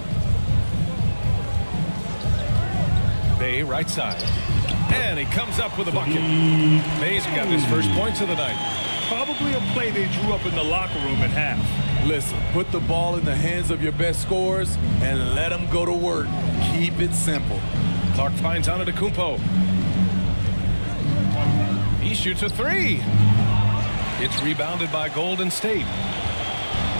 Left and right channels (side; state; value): both; inverted; correlation -1.00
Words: Bay right side. And he comes up with a bucket. Bay's got his first points of the night. Probably a play they drew up in the locker room at half. Listen, put the ball in the hands of your best scorers and let them go to work. Keep it simple. Clark finds Antetokounmpo. He shoots a 3. It's rebounded by Golden State.